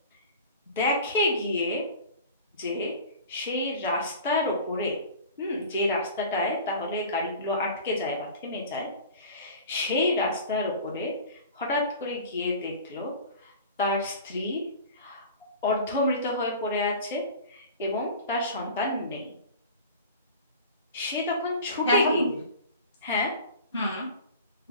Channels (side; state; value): both; inverted; correlation -0.38